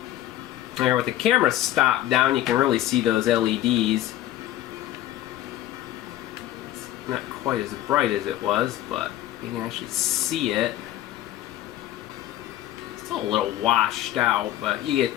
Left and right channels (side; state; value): right; quieter; 13.8 dB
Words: There, with the camera stopped down, you can really see those LEDs. It's not quite as bright as it was, but you can actually see it. Still a little washed out, but you get